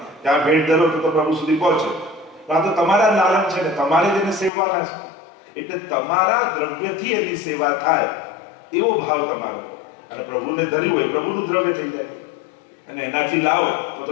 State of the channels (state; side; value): drops out; right; at 4.5 s